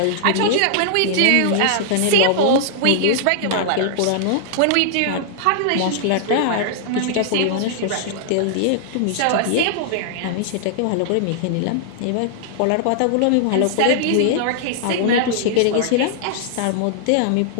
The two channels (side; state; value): both; different; correlation -0.01